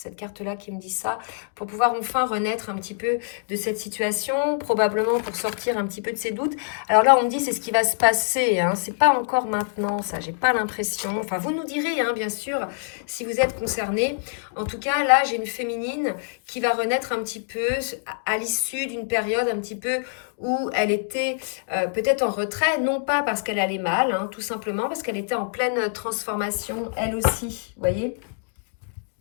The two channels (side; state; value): right; silent; digital silence